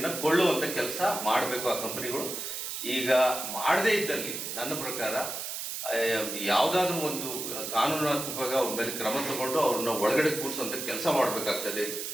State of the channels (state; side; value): noise; right; hiss, 5 dB below the sound